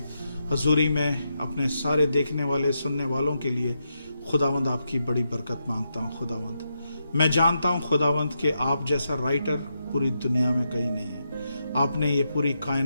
हजूरी में अपने सारे देखने वाले सुनने वालों के लिए खुदावंद आपकी बड़ी बरकत मांगता हूँ। खुदावंद मैं जानता हूँ खुदावंद कि आप जैसा राइटर पूरी दुनिया में कहीं नहीं है। आपने ये पूरी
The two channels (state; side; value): inverted; both; correlation -0.84